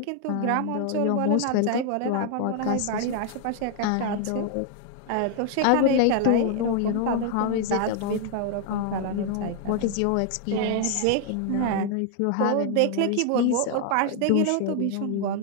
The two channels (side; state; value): both; different; correlation 0.00